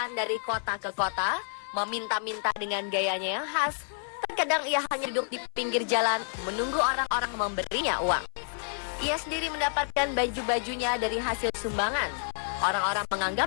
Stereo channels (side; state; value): right; silent; 58 dB below the other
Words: dari kota ke kota, meminta-minta dengan gayanya yang khas. Terkadang ia hanya duduk di pinggir jalan, menunggu orang-orang memberinya uang. Ia sendiri mendapatkan baju-bajunya dari hasil sumbangan. Orang-orang